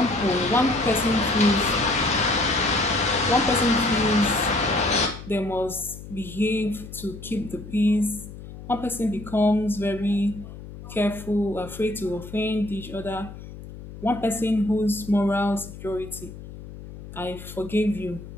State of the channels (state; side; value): noise; left; hum, 14 dB below the sound